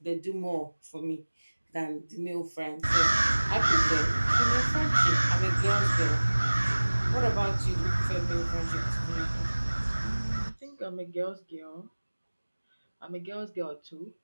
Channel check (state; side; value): inverted; both; correlation -1.00